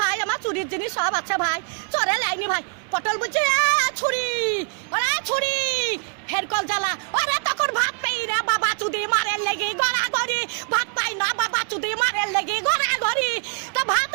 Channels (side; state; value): left; quieter; 39.0 dB